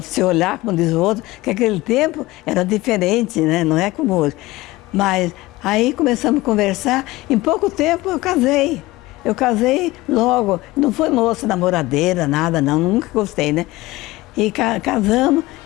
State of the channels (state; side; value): quieter; right; 19.3 dB